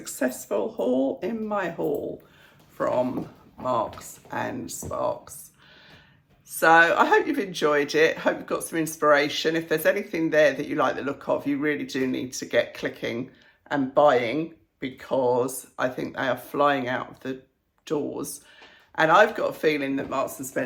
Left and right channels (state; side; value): identical; both; correlation 1.00